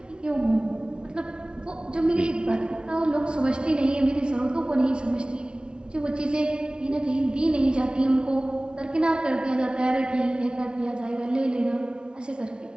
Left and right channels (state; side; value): late; left; 0.055 ms